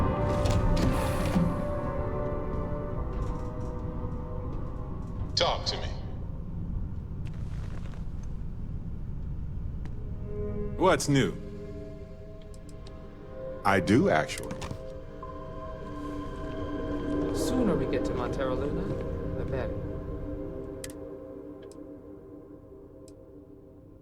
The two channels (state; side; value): identical; both; correlation 1.00